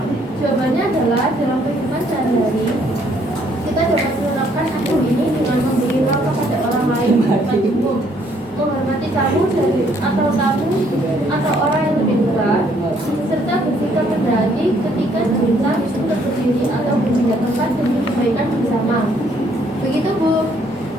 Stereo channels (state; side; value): normal; both; correlation 0.66